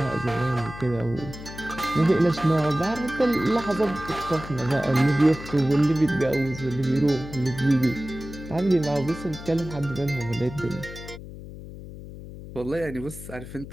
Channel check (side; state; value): left; noise; hum, 13 dB below the sound